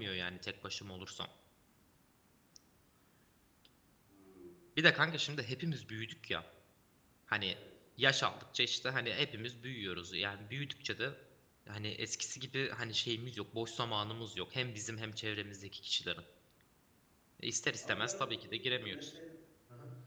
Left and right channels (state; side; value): identical; both; correlation 1.00